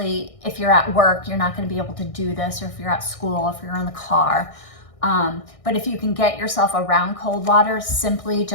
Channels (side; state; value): right; late; 1.6 ms